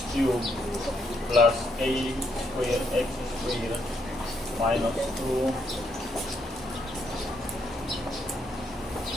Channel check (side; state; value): both; normal; correlation 0.75